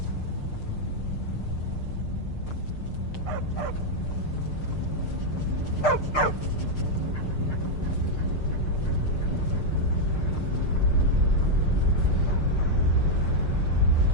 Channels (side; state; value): right; late; 6.6 ms